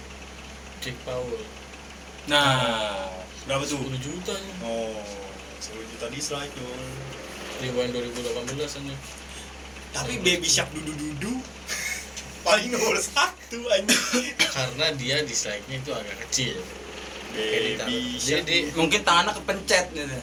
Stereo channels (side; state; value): both; identical; correlation 1.00